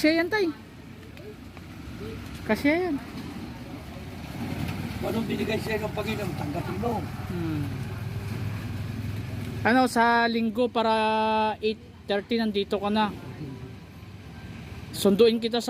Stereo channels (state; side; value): identical; both; correlation 1.00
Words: yan, tay. Kasya yan. Anong binigay sa'yo ng Panginoon? Tanggapin mo. Ano, sa linggo para 8:30 nandito ka na. Sunduin kita